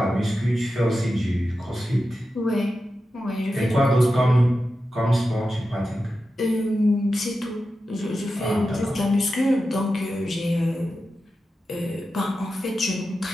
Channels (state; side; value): normal; both; correlation 0.91